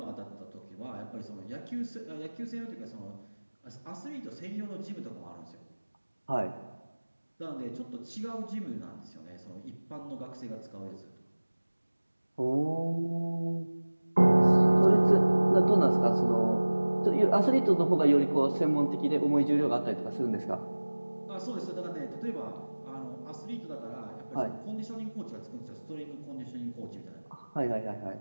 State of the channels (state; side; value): inverted; both; correlation -1.00